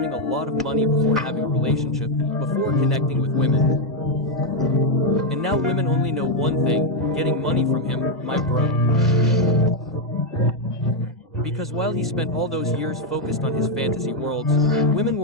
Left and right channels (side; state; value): both; normal; correlation 0.02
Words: a lot of money before having a relationship, before connecting with women. And now women only know one thing, getting money from him, my bro. Because while he spent all those years focused on his fantasy worlds, women